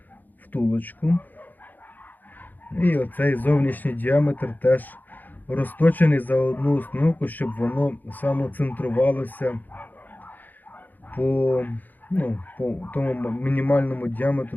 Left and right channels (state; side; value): late; right; 0.085 ms